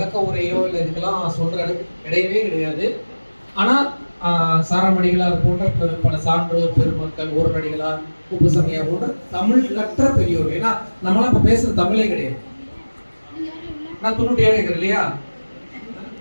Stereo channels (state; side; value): inverted; both; correlation -1.00